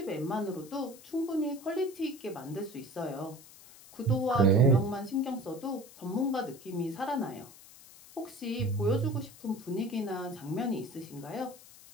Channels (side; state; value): left; noise; hiss, 20 dB below the sound